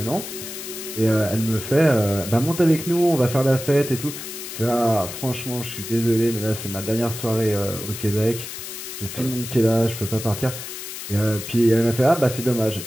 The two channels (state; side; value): noise; left; hiss, 9 dB below the sound